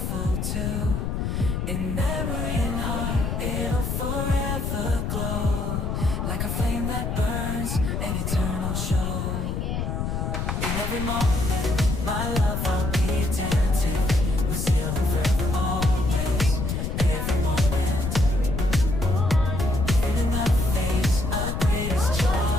too. In memory and heart, it'll forever glow, like a flame that burns, an eternal show. In every moment, my love I'll be attentive, we're sealed in forever always. Every moment, even in the face of greatest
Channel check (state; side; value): noise; left; rumble, 1 dB below the sound